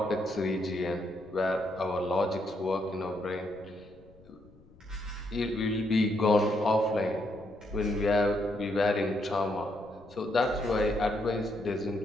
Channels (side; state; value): left; noise; rumble, 25 dB below the sound